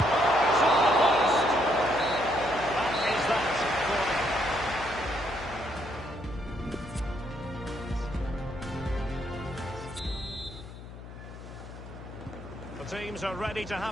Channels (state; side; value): noise; left; hum, 14 dB below the sound